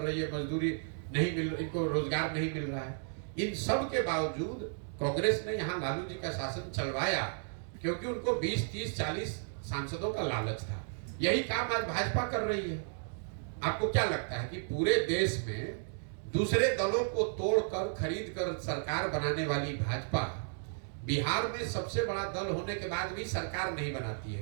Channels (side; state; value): left; silent; digital silence